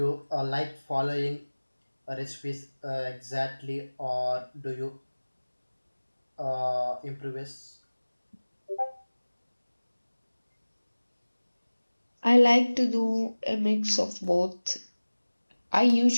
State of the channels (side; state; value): both; inverted; correlation -1.00